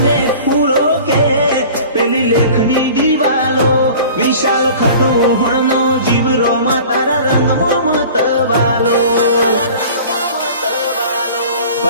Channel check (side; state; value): both; inverted; correlation -0.43